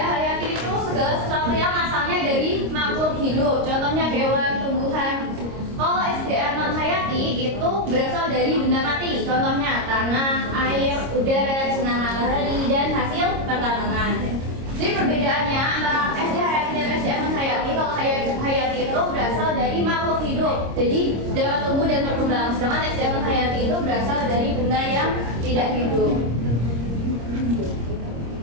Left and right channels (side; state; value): left; late; 26 ms